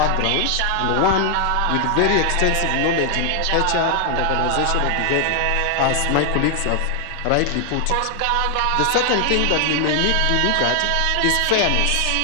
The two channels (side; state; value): both; different; correlation 0.00